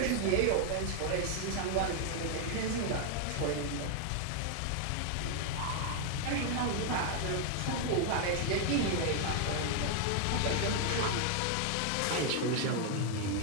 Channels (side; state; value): both; different; correlation 0.00